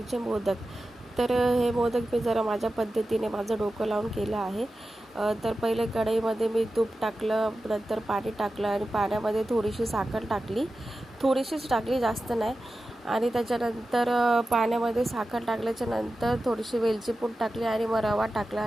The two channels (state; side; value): normal; both; correlation 0.93